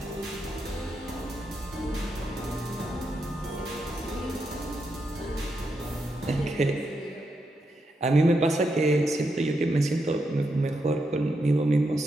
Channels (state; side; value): normal; both; correlation 0.83